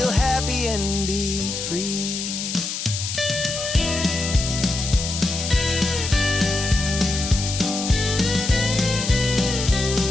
happy and be free.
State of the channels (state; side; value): noise; left; hiss, 5 dB below the sound